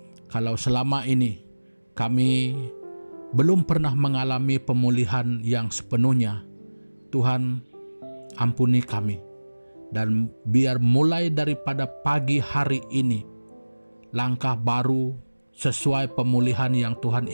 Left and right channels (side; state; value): both; inverted; correlation -1.00